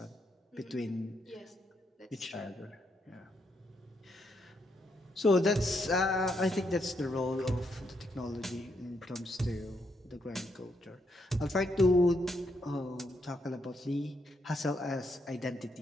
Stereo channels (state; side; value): normal; both; correlation 0.78